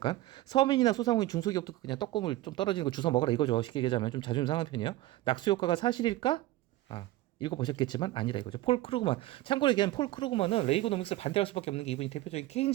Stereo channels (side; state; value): left; quieter; 16.6 dB